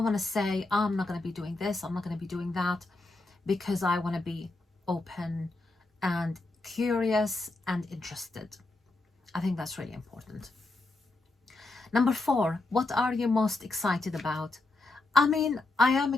want to say I'm not going to be doing this, I'm not going to be doing that, because I want to be open and curious and interested. I think that's really important. Number 4: what are you most excited about? I mean, I am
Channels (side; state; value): right; quieter; 3.0 dB